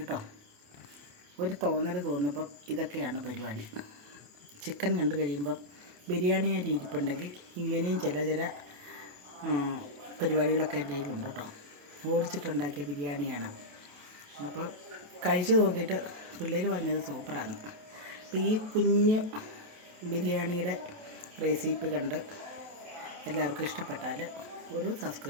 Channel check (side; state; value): left; late; 28 ms